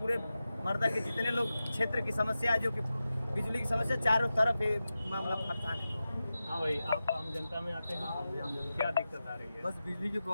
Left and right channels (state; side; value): inverted; both; correlation -0.93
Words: मर्दा के जितने लोग क्षेत्र की समस्या है, जो कि बिजली की समस्या चारों तरफ मामला परेशान है। हाँ भाई, आप आम जनता में आते हैं, क्या दिक्कत आ रही है? बस बिजली की